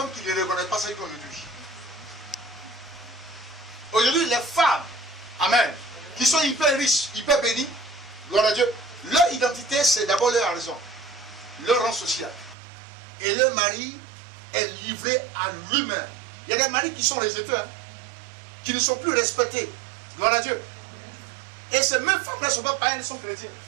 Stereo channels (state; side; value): drops out; left; at 12.6 s